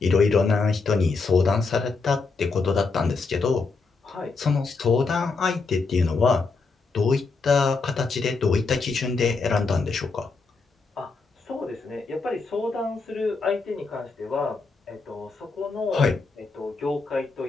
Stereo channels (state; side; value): quieter; right; 4.3 dB